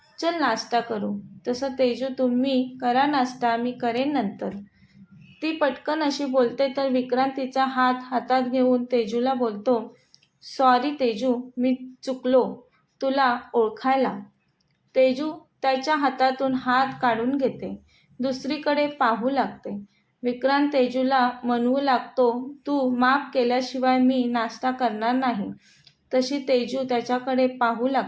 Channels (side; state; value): both; identical; correlation 1.00